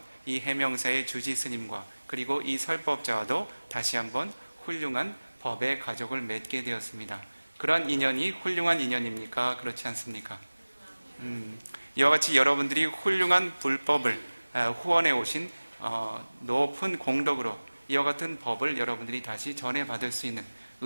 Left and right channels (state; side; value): inverted; both; correlation -1.00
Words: 이 해명사의 주지 스님과 그리고 이 설법자와도 다시 한번 훌륭한 법의 가족을 맺게 되었습니다. 그러한 인연이 훌륭한 인연입니까? 그렇지 않습니까? 이와 같이 여러분들이 훌륭한 불법을 후원해 오신 높은 공덕으로 이와 같은 법을 여러분들이 다시 전해받을 수 있는